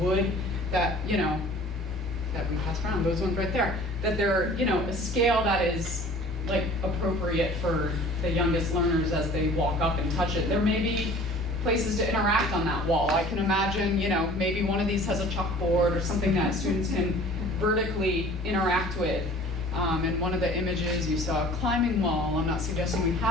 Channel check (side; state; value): both; normal; correlation 0.47